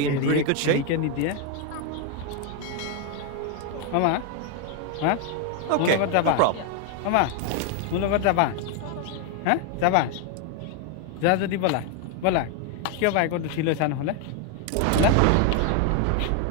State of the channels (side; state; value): both; different; correlation 0.01